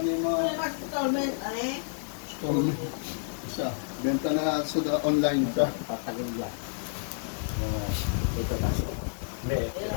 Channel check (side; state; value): right; silent; digital silence